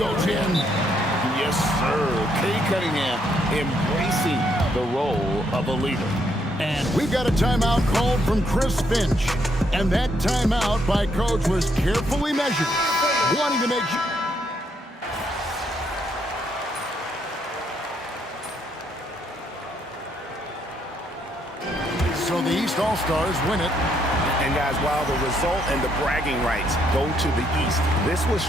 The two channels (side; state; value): both; normal; correlation 0.73